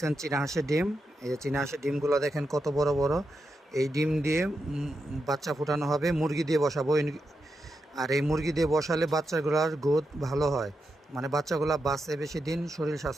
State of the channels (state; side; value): normal; both; correlation 0.86